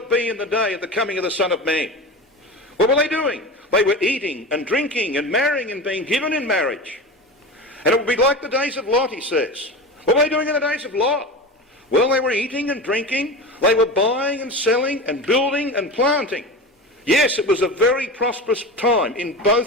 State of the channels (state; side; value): normal; both; correlation 0.28